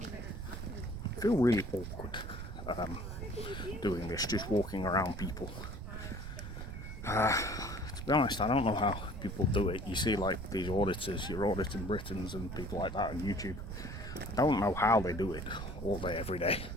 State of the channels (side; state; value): right; noise; rumble, 7 dB below the sound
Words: I feel really awkward doing this, just walking around people. To be honest, I don't know how people do it. You see like these auditors, you're auditing Britons and people like that on YouTube. I don't know how they do it all day, every day.